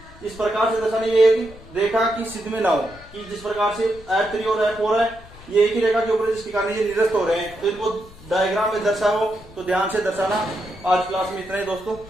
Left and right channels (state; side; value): noise; left; rumble, 20 dB below the sound